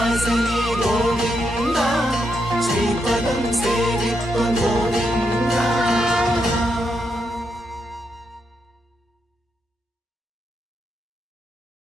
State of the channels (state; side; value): normal; both; correlation 0.82